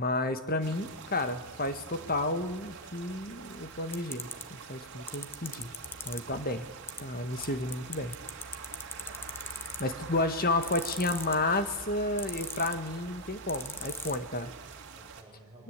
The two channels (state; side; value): normal; both; correlation 0.00